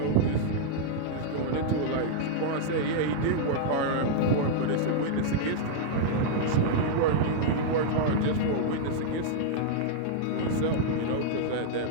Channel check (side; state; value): both; different; correlation -0.02